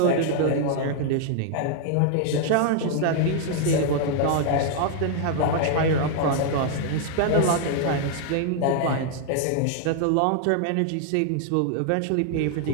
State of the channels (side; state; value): both; different; correlation 0.00